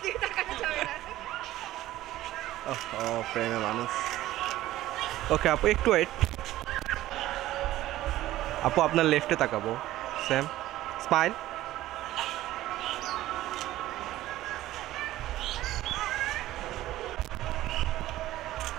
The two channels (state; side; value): quieter; left; 15.1 dB